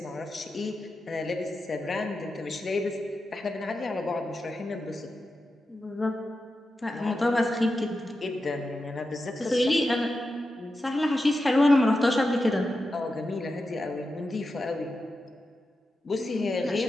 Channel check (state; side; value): normal; both; correlation 0.90